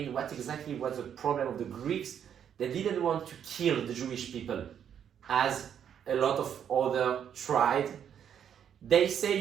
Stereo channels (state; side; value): quieter; left; 8.8 dB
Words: what exactly was the problem of the Greeks. They didn't want to kill the Jewish people, as a lot of other tried. They